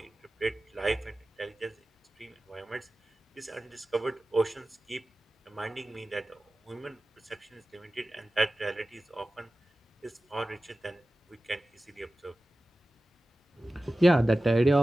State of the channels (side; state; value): both; normal; correlation 0.96